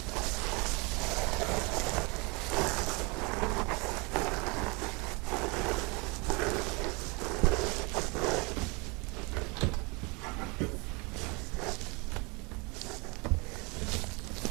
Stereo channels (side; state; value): left; quieter; 29.0 dB